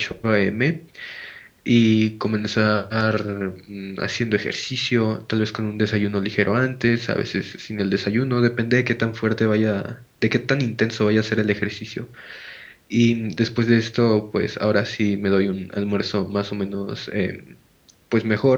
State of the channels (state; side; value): identical; both; correlation 1.00